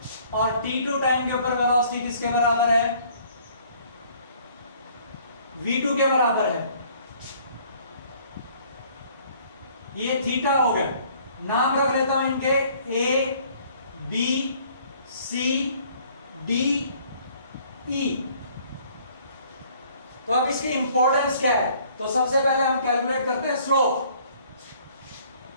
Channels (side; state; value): both; inverted; correlation -0.58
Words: और t2 टाइम के ऊपर वेलोसिटी किसके बराबर है? v2 के बराबर है। ये थीटा हो गया। नाम रख लेता हूं इनके a b c d e। तो अब इसकी इंपॉर्टेंस क्या है? तो सबसे पहले हम कैलकुलेट करते हैं स्लोप।